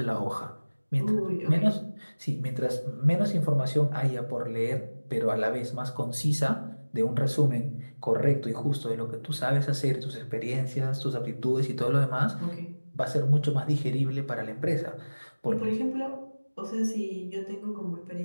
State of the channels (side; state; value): both; inverted; correlation -1.00